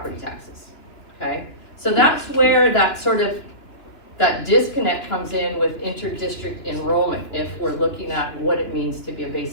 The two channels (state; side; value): late; right; 2.9 ms